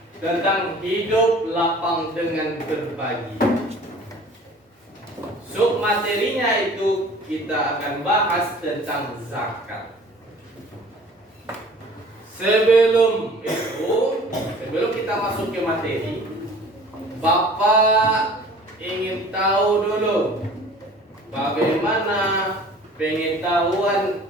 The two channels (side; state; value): both; normal; correlation 0.47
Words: tentang hidup lapang dengan berbagi. Sub materinya itu kita akan bahas tentang zakat. Sebelum kita masuk ke materi, Bapak ingin tahu dulu bagaimana pengetahuan